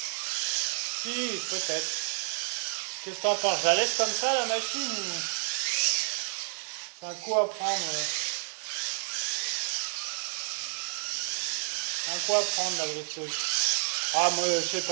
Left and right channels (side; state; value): left; silent; digital silence